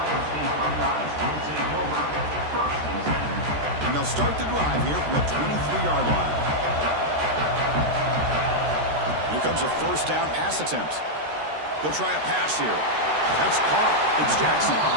And they'll start the drive here from the 23-yard line. Here comes a 1st down pass attempt. They'll try a pass here. That's Carr. It's Jackson.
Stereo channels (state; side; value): late; left; 13 ms